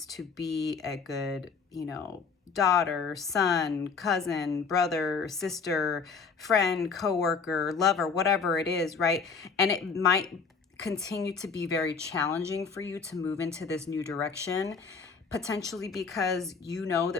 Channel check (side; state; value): right; quieter; 5.3 dB